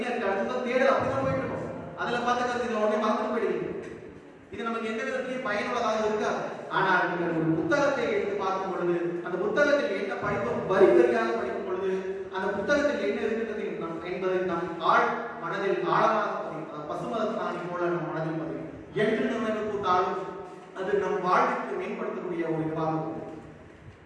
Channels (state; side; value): identical; both; correlation 1.00